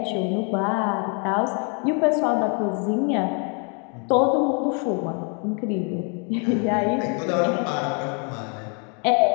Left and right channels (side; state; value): right; quieter; 37.3 dB